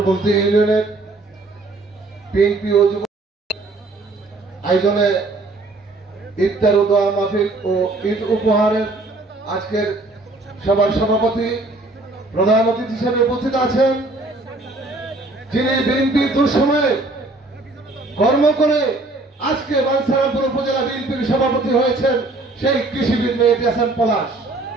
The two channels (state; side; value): quieter; left; 3.0 dB